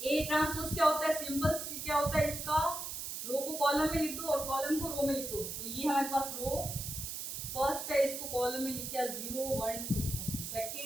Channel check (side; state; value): right; noise; hiss, 6 dB below the sound